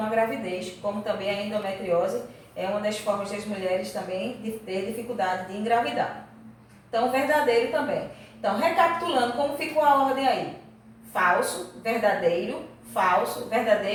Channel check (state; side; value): identical; both; correlation 1.00